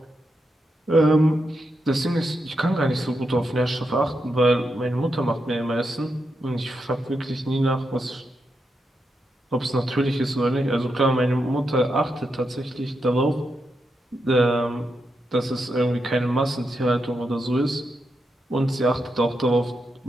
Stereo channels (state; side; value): normal; both; correlation 0.85